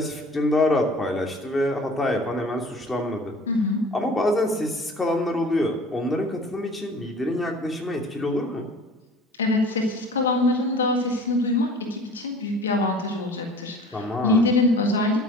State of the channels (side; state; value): both; normal; correlation 0.45